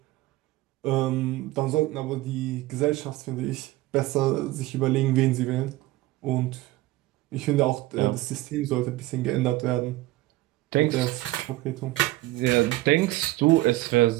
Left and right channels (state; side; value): quieter; left; 17.9 dB